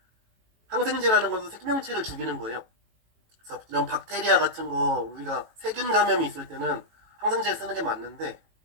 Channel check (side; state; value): left; late; 18 ms